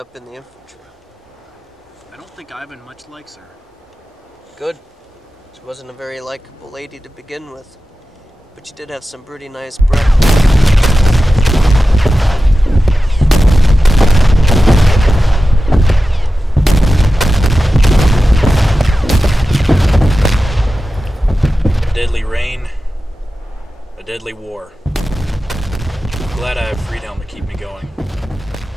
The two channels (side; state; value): both; normal; correlation 0.93